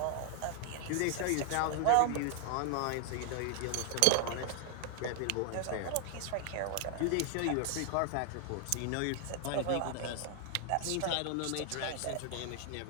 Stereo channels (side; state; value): both; different; correlation 0.00